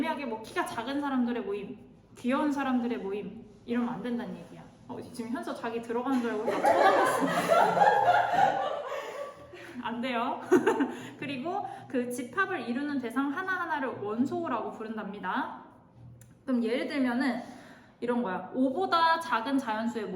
뭐 키가 작은 사람들의 모임, 귀여운 사람들의 모임 이러면 안 된다는 얘기야. 지금 현서 자기 들어가는 줄 알고 막 쳐다봤어. 안 돼요. 그리고 그 집합을 이루는 대상 하나하나를 원소라고 부른답니다. 그럼 예를 들면은 이런 거야. 5보다 작은 자연수의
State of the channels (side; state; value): both; identical; correlation 1.00